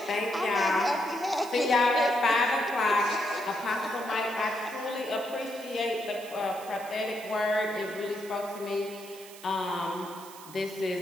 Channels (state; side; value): noise; right; hiss, 17 dB below the sound